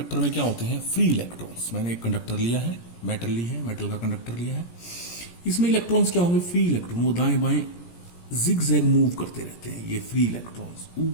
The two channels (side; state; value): right; late; 17 ms